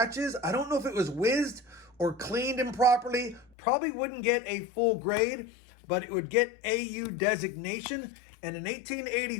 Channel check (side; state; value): right; drops out; at 3.5 s